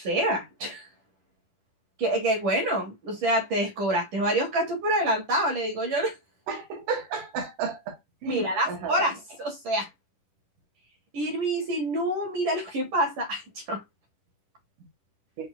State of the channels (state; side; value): late; left; 10 ms